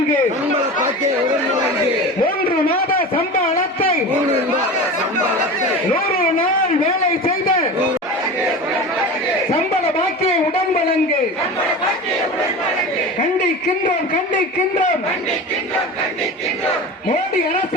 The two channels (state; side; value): normal; both; correlation 0.31